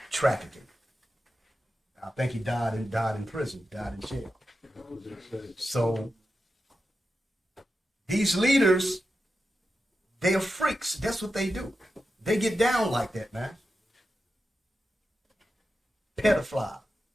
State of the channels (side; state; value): both; normal; correlation 0.90